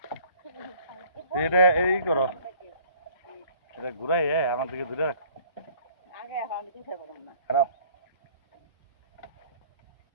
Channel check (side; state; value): both; inverted; correlation -0.55